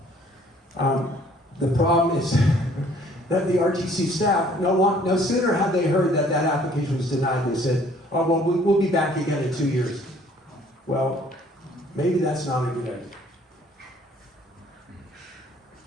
The problem is that the RTC staff, no sooner had they heard that that application was denied, they said, oh, well, we'll be back again in 2 years. Well, maybe that's not a good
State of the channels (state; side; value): normal; both; correlation 0.59